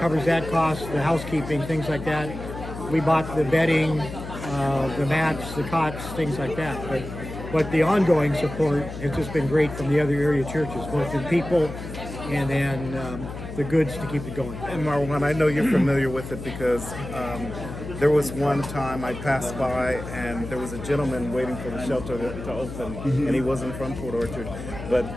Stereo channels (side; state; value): left; noise; hum, 10 dB below the sound